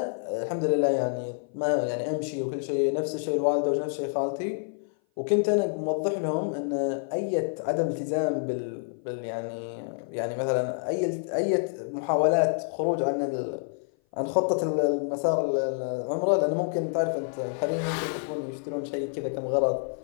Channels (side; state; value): right; silent; 56 dB below the other